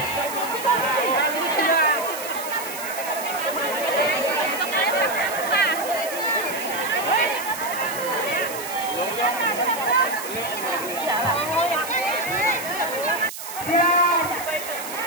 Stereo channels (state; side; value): noise; right; hiss, 10 dB below the sound